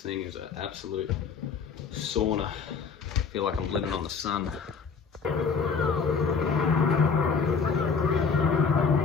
is an absolute sauna. I feel like I'm living on the sun.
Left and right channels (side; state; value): right; quieter; 5.5 dB